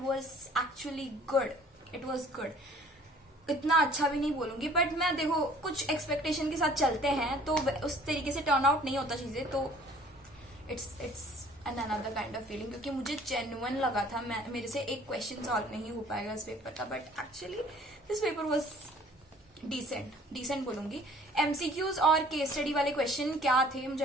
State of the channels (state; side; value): normal; both; correlation 0.53